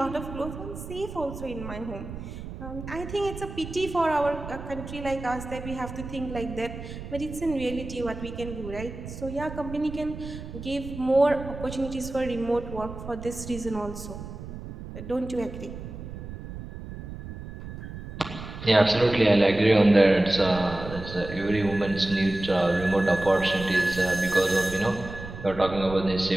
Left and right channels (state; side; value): noise; right; rumble, 11 dB below the sound